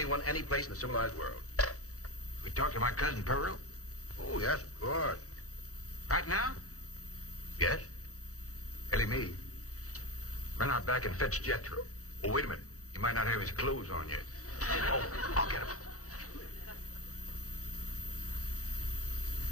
any place in the civilized world. We talked to my cousin Pearl. Oh, yes, of course. Right now? Yes? Ellie Mae. Run out back and fetch Jethro. Oh, wait a minute. He might not have his clothes on yet. Oh, I'll get him.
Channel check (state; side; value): late; right; 0.65 ms